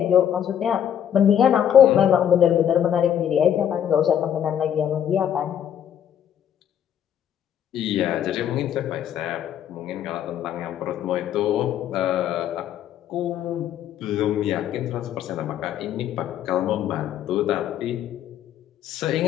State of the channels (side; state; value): right; quieter; 9.7 dB